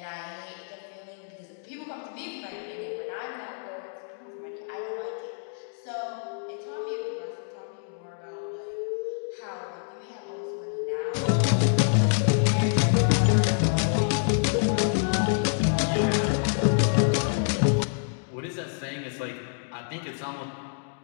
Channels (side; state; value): right; silent; digital silence